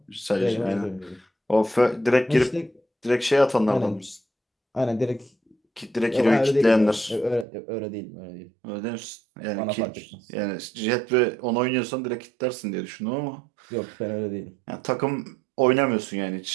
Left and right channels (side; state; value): left; drops out; at 7.5 s